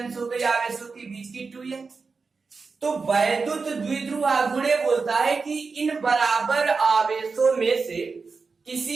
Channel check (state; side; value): quieter; left; 4.6 dB